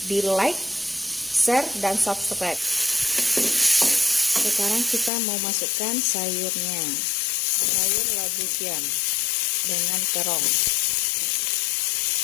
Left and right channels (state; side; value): drops out; right; at 5.1 s